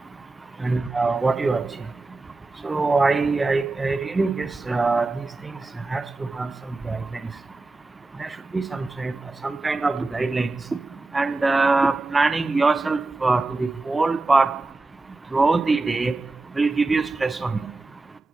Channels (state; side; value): quieter; left; 3.3 dB